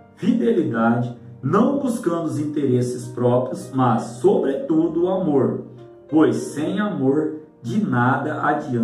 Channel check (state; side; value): identical; both; correlation 1.00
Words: fidelidade, não buscando os interesses próprios, mas, sobretudo, o amor, pois sem amor de nada